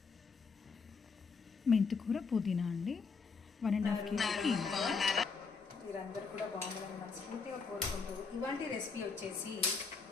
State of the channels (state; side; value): quieter; right; 5.0 dB